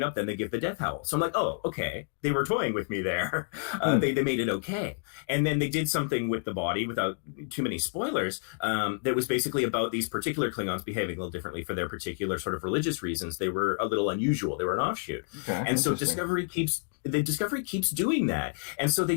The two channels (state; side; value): silent; right; 58 dB below the other